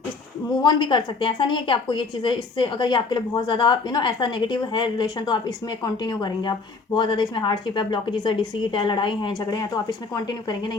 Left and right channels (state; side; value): quieter; right; 4.3 dB